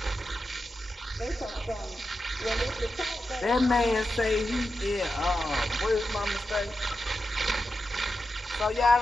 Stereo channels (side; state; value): both; normal; correlation 0.89